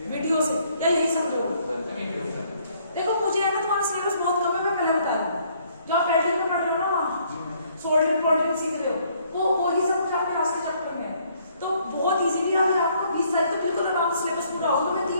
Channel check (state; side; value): inverted; both; correlation -0.65